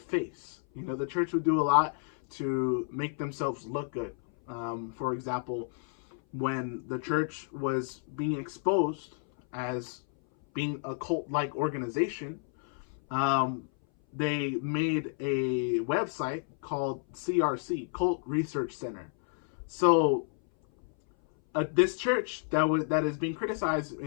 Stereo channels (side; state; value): right; silent; 57 dB below the other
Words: The church would do a lot to make themselves look good. For example, when the church was being exposed as being a cult-like organization, they made a website called CRC, Cult Research Center. So this church that is being criticized